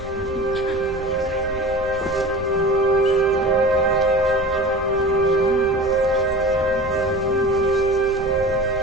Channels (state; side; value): normal; both; correlation 0.35